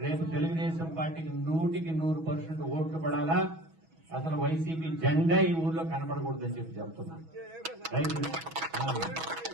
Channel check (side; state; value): left; late; 6.2 ms